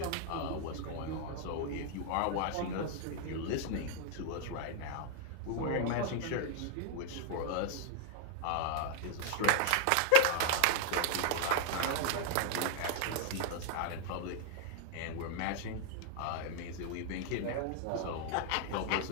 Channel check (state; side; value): different; both; correlation 0.00